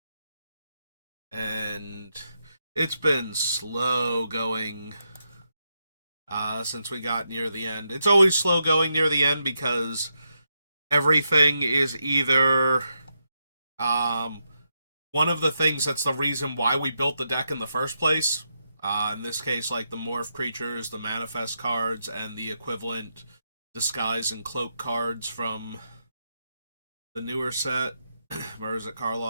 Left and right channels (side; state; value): both; inverted; correlation -0.84